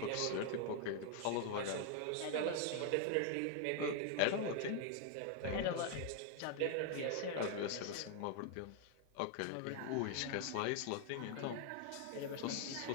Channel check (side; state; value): both; different; correlation 0.00